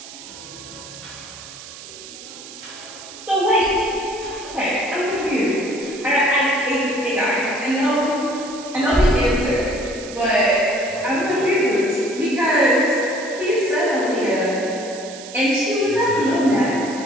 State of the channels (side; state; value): right; noise; hiss, 15 dB below the sound